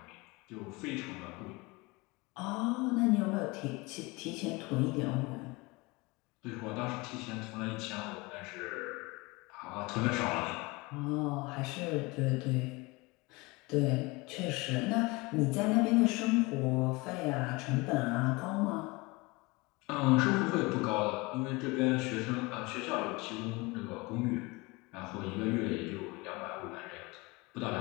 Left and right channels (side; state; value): right; quieter; 24.6 dB